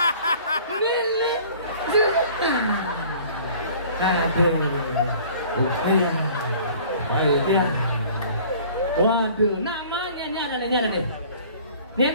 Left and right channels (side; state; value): both; inverted; correlation -0.49